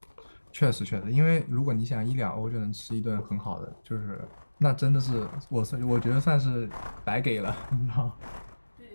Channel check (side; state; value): both; inverted; correlation -1.00